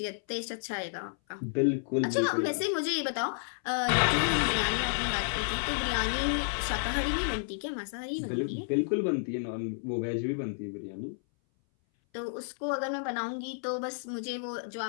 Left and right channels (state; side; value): silent; right; 57 dB below the other